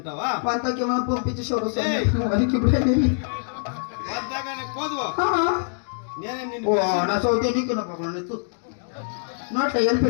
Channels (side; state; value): right; silent; 62 dB below the other